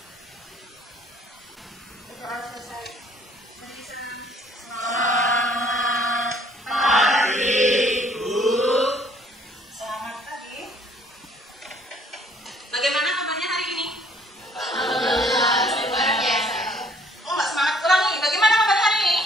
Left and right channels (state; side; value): normal; both; correlation 0.60